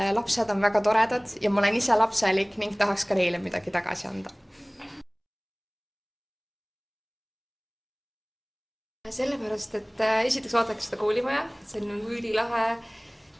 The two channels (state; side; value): identical; both; correlation 1.00